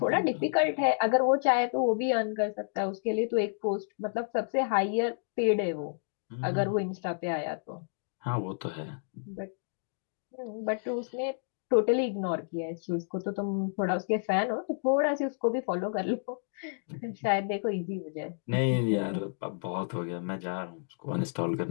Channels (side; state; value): right; silent; digital silence